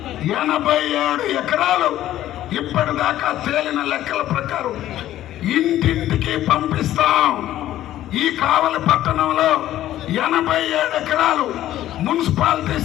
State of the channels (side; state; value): right; quieter; 13.3 dB